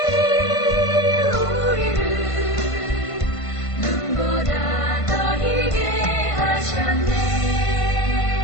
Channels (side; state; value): right; late; 1.5 ms